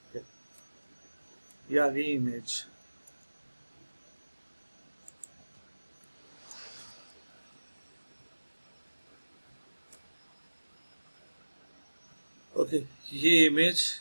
Okay. ये आ गई इमेज। ओके, ये इमेज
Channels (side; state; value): both; inverted; correlation -1.00